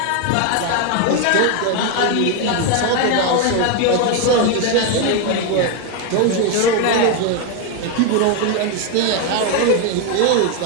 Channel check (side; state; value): both; different; correlation 0.01